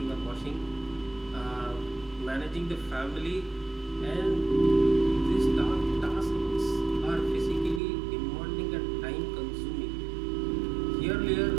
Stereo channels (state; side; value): drops out; left; at 7.8 s